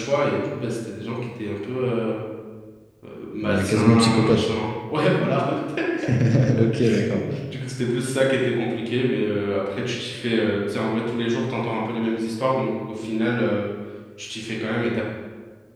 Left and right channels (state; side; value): identical; both; correlation 1.00